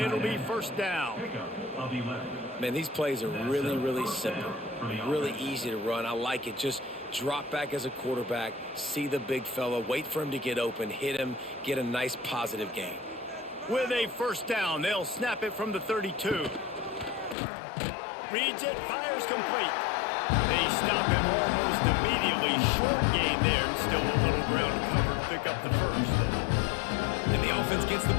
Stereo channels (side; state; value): right; drops out; at 17.4 s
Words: be first down. Man, these plays are really, really simple. Really easy to run. I like it. Just drop back as a quarterback, see the big fella, wait for him to get open, hit him, get a nice positive gain. With a first down, they'll snap it from the 32. Reads it, fires complete. They stop him almost immediately. Short gain there, and still a little ground covered to pick up the first. And the offense gets the